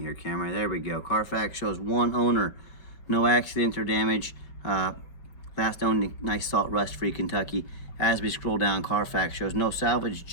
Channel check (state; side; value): late; right; 5.3 ms